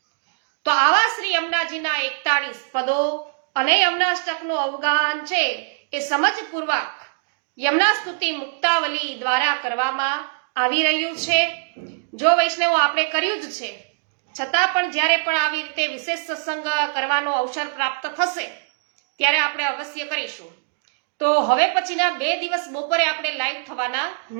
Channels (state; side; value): silent; left; digital silence